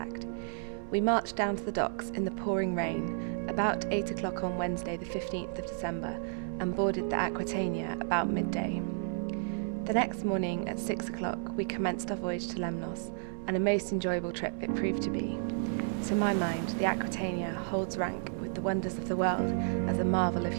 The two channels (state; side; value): silent; left; 56 dB below the other